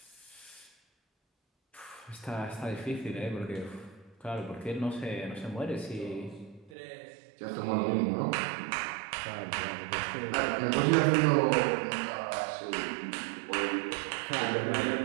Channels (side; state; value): left; drops out; at 6.7 s